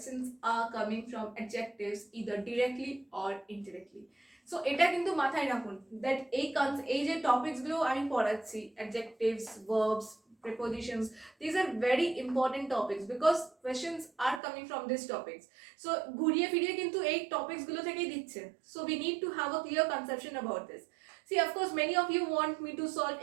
are coming from adjectives either directly or indirectly. So এটা কিন্তু মাথায় রাখুন that এই যে টপিকসগুলো আমি পড়াচ্ছি adjectives verbs prepositions, these are very important topics because questions are coming from these topics. So ঘুরিয়ে ফিরিয়ে কিন্তু এই topics গুলো থেকেই দিচ্ছে. So we need to have a clear conception about this. See, of course, many of you want me to solve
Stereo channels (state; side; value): drops out; left; at 14.4 s